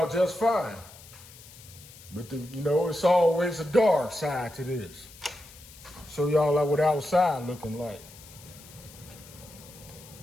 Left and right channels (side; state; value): left; noise; hiss, 20 dB below the sound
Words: just fine. But it's always a dark side to this. Show y'all what outside looking like.